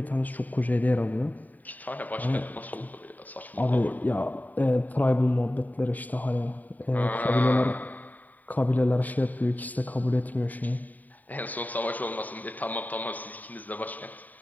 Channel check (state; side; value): late; right; 0.082 ms